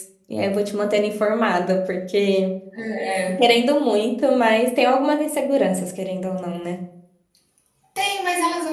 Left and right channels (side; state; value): both; identical; correlation 1.00